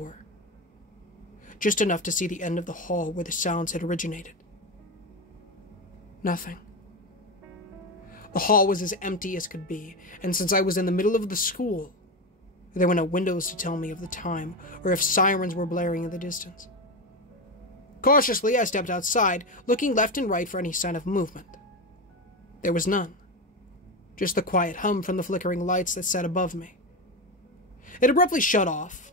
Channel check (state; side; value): normal; both; correlation 0.16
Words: just enough to see the end of the hall where the sounds had originated. Nothing. The hall was as empty as could be, and since I was in the middle of the school, there were no windows to tell me of the time or if sirens were blaring in the distance. Cautiously, I stepped outside, looking left and right for any sign of movement. There was none. Just the quiet hum from the flickering lights that sat above me. It abruptly shut